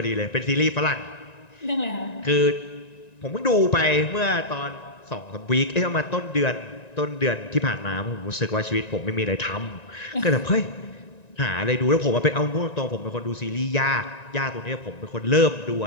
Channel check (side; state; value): right; late; 1.9 ms